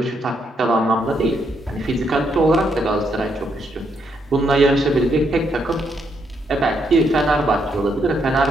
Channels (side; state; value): both; normal; correlation 0.76